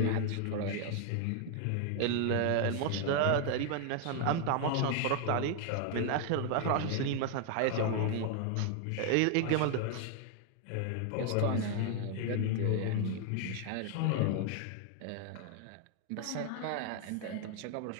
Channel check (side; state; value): both; different; correlation 0.00